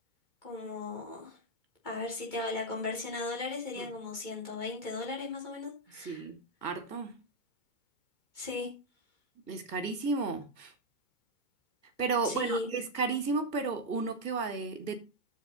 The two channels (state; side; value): late; right; 2.2 ms